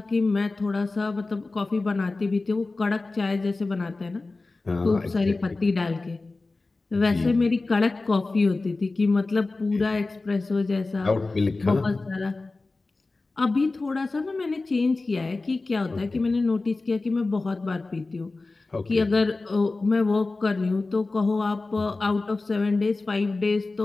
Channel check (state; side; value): quieter; right; 3.4 dB